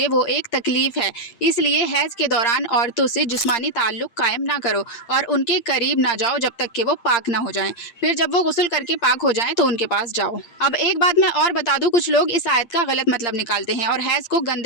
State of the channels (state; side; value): late; right; 8.7 ms